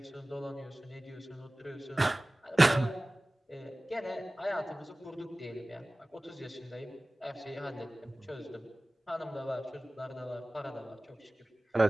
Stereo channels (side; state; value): both; normal; correlation 0.98